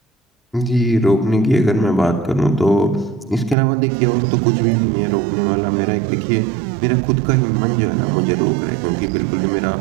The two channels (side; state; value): left; drops out; at 3.6 s